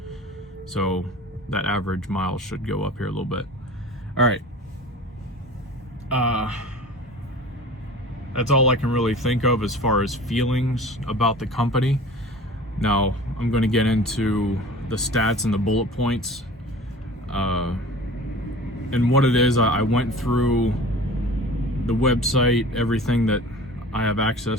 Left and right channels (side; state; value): both; normal; correlation 0.40